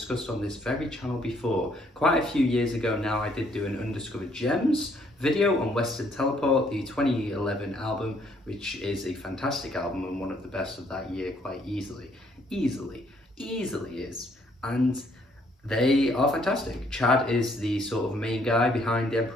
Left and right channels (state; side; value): normal; both; correlation 0.67